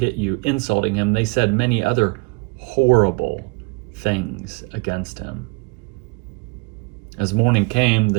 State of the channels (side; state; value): left; quieter; 29.3 dB